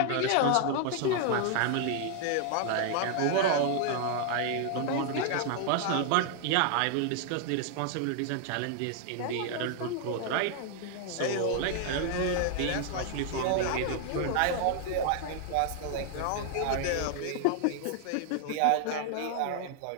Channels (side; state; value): both; different; correlation 0.00